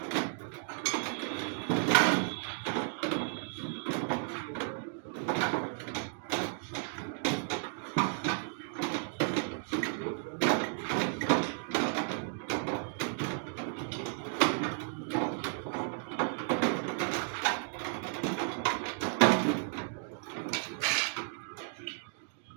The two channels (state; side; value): silent; left; 55 dB below the other